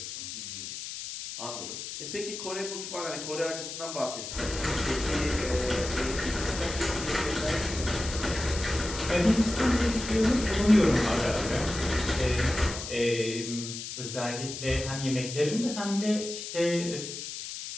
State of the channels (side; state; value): left; noise; hiss, 8 dB below the sound